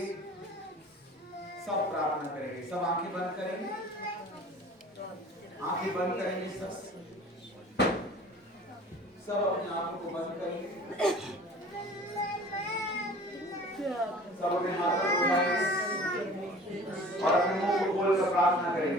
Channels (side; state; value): both; normal; correlation 0.44